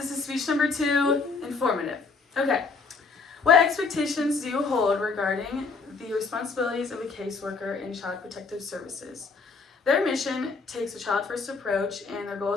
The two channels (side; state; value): right; quieter; 4.5 dB